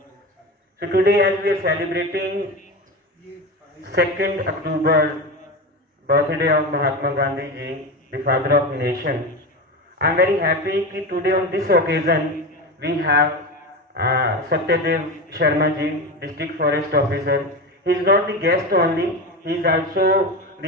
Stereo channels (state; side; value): normal; both; correlation 0.22